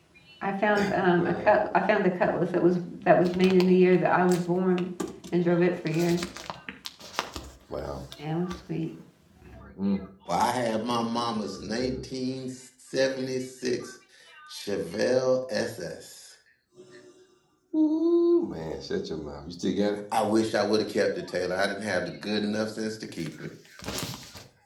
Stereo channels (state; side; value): identical; both; correlation 1.00